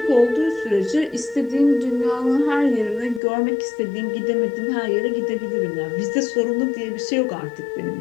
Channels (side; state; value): right; drops out; at 3.2 s